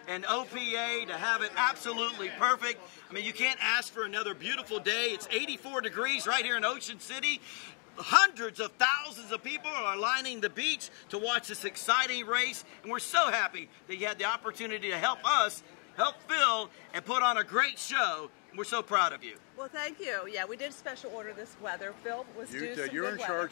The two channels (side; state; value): right; quieter; 38.9 dB